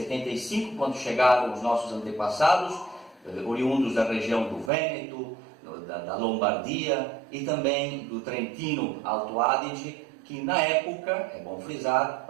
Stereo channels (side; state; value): left; drops out; at 4.7 s